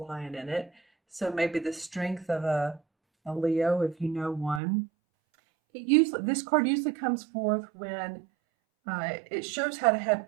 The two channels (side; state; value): left; drops out; at 4.6 s